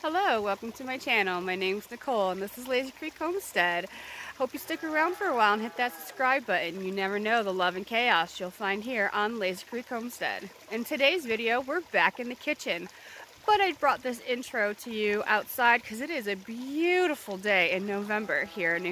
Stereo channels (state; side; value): identical; both; correlation 1.00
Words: Hello, welcome to my channel. My name's Nicole and this is Lazy Creek Homestead. Hope you stick around for a while and hit that subscribe button. You never know the love and chaos you'll find here on Lazy Creek Homestead. In today's video, we're back in the kitchen. But I brought this intro to you outside because it is a beautiful day in November here in